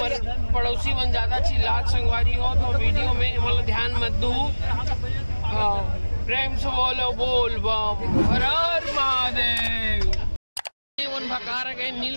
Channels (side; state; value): both; inverted; correlation -1.00